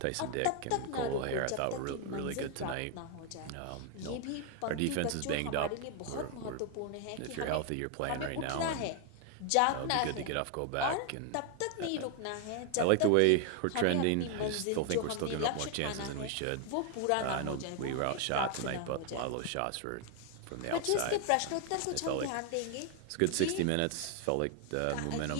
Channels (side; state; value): both; different; correlation 0.00